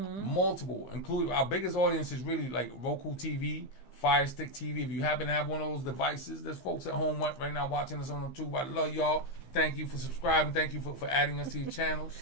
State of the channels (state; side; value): late; right; 15 ms